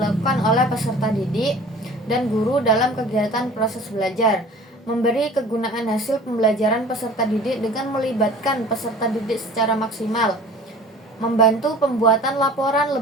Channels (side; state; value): both; normal; correlation 0.44